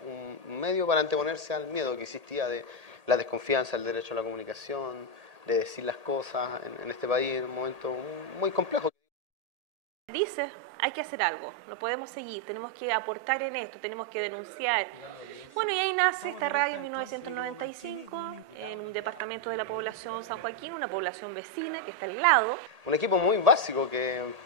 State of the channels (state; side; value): late; left; 1.8 ms